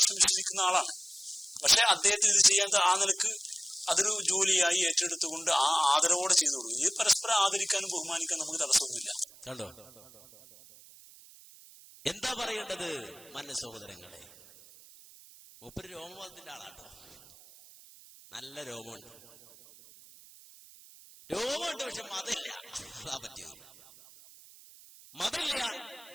വിശ്വസിക്കുന്ന ആളാണ്. പക്ഷെ അദ്ദേഹത്തിന് ഇത് ചെയ്യാൻ ആ നിലക്ക് അതൊരു ജോലിയായി ഏറ്റെടുത്തുകൊണ്ട് ആ ആദരവോടെ ചെയ്തു കൊടുക്കും. ഇത് പരസ്പരം ആദരിക്കാനും ബഹുമാനിക്കാനും നമുക്ക് തടസ്സമൊന്നുമില്ല. കണ്ടോ എന്താ പറയേണ്ടത്? മാന്യ സഹോദരങ്ങളെ, മൂപ്പര് രോമവാദത്തിന്റെ ആളാട്ടോ. നല്ല രോമമുണ്ട്, പക്ഷെ മതമില്ല. അതാ പറ്റിയത്. മതമില്ല.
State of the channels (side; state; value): right; noise; hiss, 22 dB below the sound